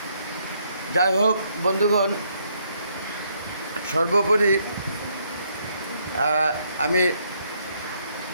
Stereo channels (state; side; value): inverted; both; correlation -0.71